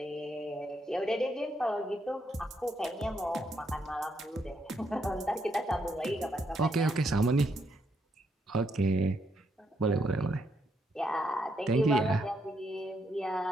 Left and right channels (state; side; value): normal; both; correlation 0.77